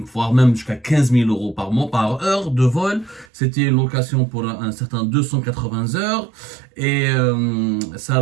voire même jusqu'à 15 000 euros par mois, par heure de vol. C'était une location pour un certain 280 heures. Et ça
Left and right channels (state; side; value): drops out; left; at 3.2 s